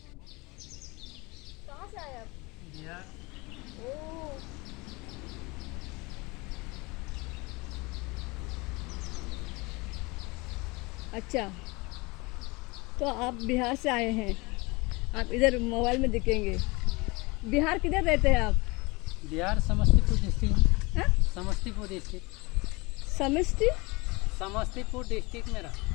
कहाँ से आए आप? बिहार। ओह, अच्छा, तो आप बिहार से आए हैं। आप इधर मोबाइल में दिखेंगे। बिहार किधर रहते हैं आप? बिहार समस्तीपुर डिस्ट्रिक्ट। हाँ? समस्तीपुर डिस्ट्रिक्ट। समष्टि। समस्तीपुर डिस्ट्रिक्ट में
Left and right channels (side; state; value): right; quieter; 25.1 dB